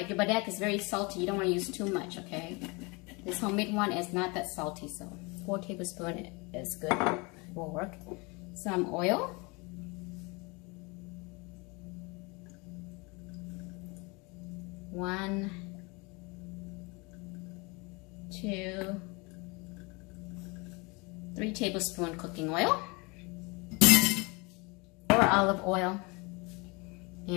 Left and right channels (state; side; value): quieter; right; 28.0 dB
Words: your padek is very salty, you don't want to use too much, okay? This homemade one is not that salty, so 4 tablespoons is good, it will work. Some oil. 1, 2, 3 tablespoons cooking oil. Or olive oil.